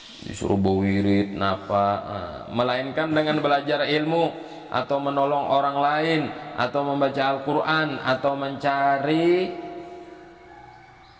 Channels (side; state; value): both; identical; correlation 1.00